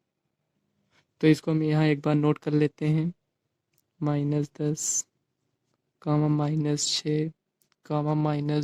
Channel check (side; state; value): both; identical; correlation 1.00